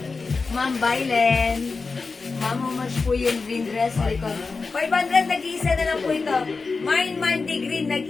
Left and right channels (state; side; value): quieter; right; 4.3 dB